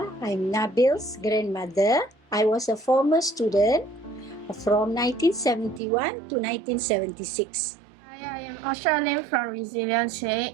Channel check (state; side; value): drops out; left; at 5.8 s